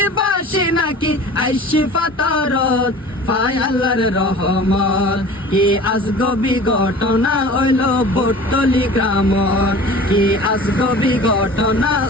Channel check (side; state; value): both; normal; correlation 0.41